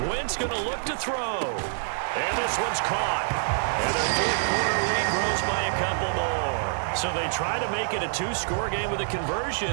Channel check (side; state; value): left; silent; digital silence